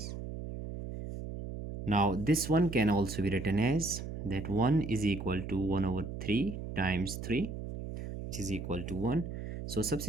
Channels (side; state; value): right; noise; hum, 7 dB below the sound